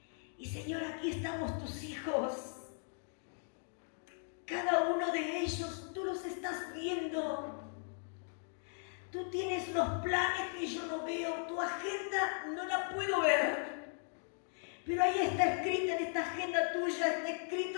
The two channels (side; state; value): right; silent; 53 dB below the other